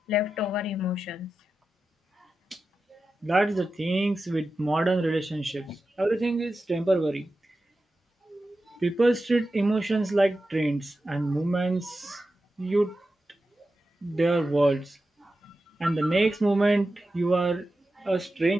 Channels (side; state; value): both; normal; correlation 0.92